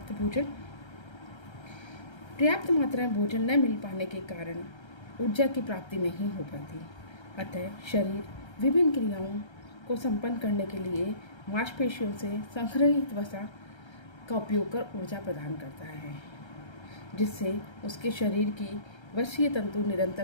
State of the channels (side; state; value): right; late; 1.3 ms